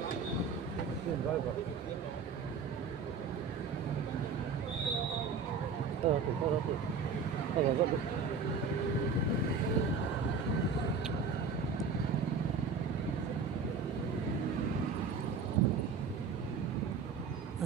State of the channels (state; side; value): quieter; left; 5.0 dB